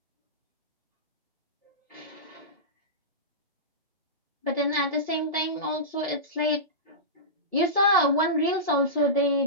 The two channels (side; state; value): both; normal; correlation -0.18